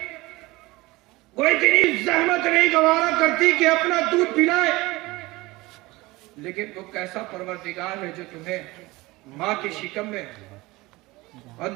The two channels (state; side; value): quieter; left; 21.1 dB